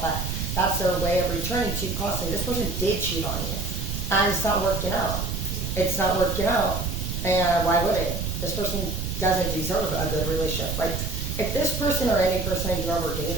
but that's their way of returning to you constantly. This person did cheat on you. And it's not working out. It's not working out. And why would it? This person doesn't deserve a good relationship. Like, if this person or any person you've ever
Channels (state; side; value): noise; right; rumble, 3 dB below the sound